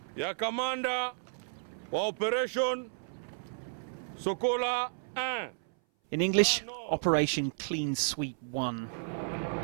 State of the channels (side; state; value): left; silent; 56 dB below the other